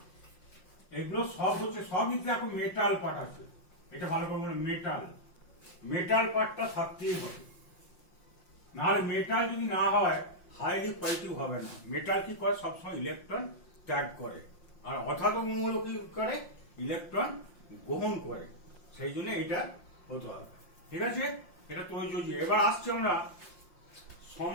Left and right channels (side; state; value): right; late; 5.6 ms